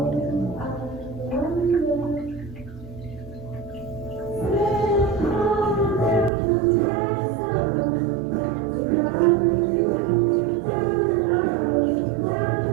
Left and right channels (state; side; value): drops out; left; at 6.3 s